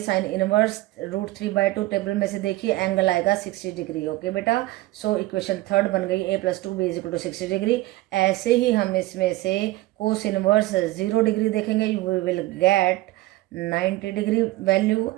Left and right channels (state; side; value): quieter; left; 18.3 dB